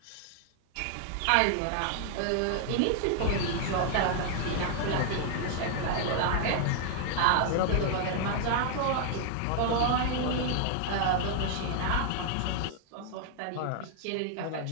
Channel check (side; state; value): both; different; correlation 0.00